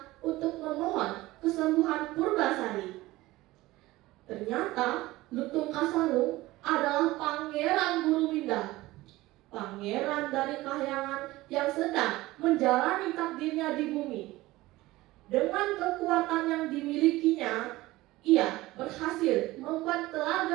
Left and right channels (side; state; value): left; quieter; 18.5 dB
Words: untuk memohon kesembuhan Purbasari. Ternyata Lutung Kasarung adalah Pangeran Gurumida, pangeran dari kahyangan yang sedang menjalani takdirnya di bumi. Dengan kekuatan yang dimilikinya, ia berhasil membuat